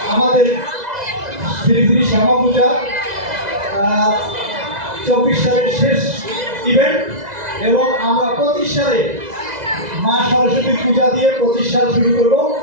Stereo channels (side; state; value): left; late; 2.0 ms